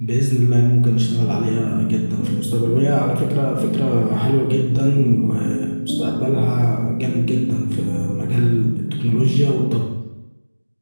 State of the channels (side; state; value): both; inverted; correlation -1.00